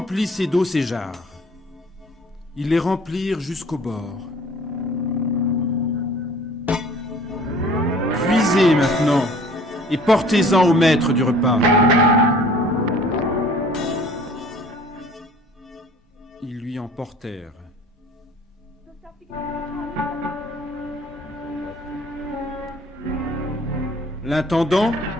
d'eau ces jarres. » Ils les remplirent jusqu'au bord. « Puisez maintenant et portez-en au maître du repas. » Ils lui en portèrent. L'intendant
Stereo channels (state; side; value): normal; both; correlation 0.51